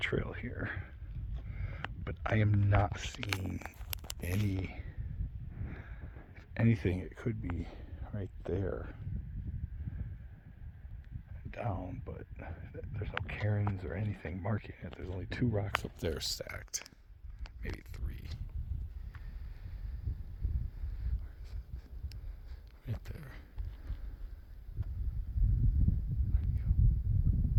here, but I am not seeing anything. It could be right there down, but there's no cairns or anything marking it. There's only 2 rocks up there stacked, maybe 3. Right there.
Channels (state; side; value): identical; both; correlation 1.00